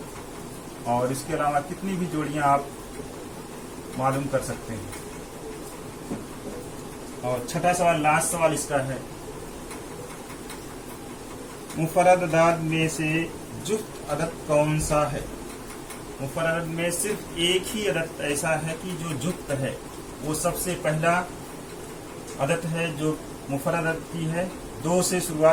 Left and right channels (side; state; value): both; identical; correlation 1.00